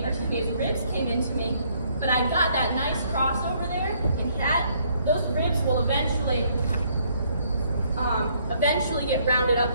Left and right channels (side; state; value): both; inverted; correlation -0.67